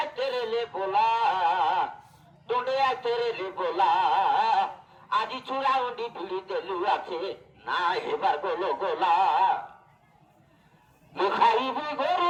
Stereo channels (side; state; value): both; identical; correlation 1.00